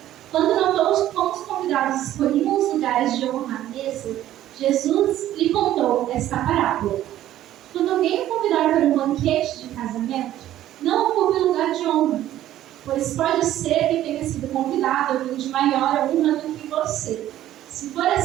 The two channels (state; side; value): quieter; left; 13.0 dB